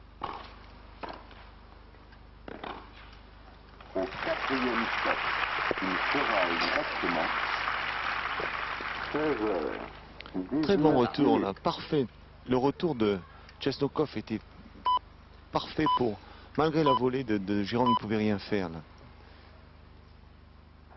Au quatrième set, il sera exactement 16 heures. Très bon 19 retour minutes. là, parfait. Le retour de Chesnokov était parfait pour, malgré la volée de Jérôme, il ne pouvait rien faire là.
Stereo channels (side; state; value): both; identical; correlation 1.00